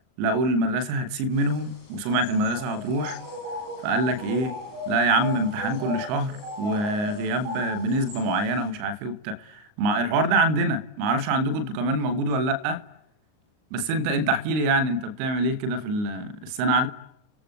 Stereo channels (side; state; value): left; late; 38 ms